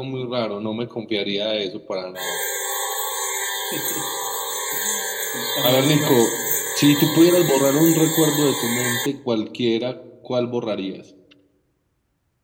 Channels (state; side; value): identical; both; correlation 1.00